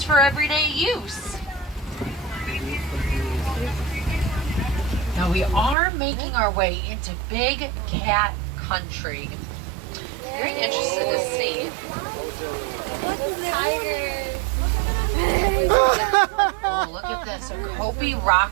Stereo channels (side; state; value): left; drops out; at 5.8 s